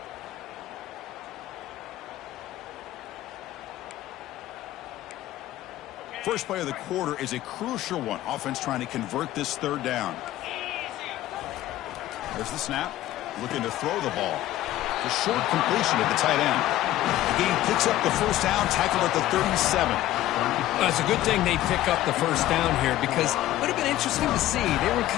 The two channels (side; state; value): right; quieter; 14.5 dB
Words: First play of the quarter is a crucial one. Offense trying to convert this third down. There's the snap. Looking to throw the ball. The short completion at the tight end. The game picks up the first down, tackled at the 37. It's a good thing they pick up the first down here because it would have been interesting to see. They were